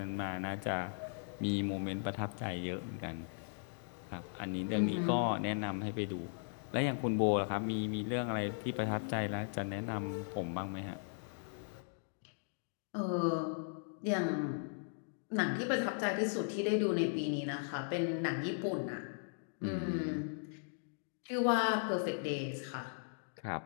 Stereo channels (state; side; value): silent; right; digital silence